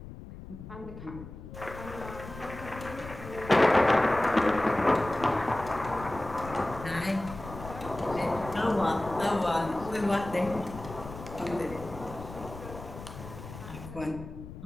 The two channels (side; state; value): left; noise; rumble, 13 dB below the sound